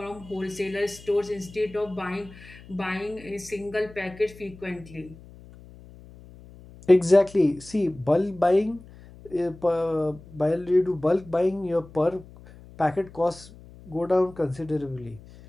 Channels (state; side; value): noise; left; hum, 20 dB below the sound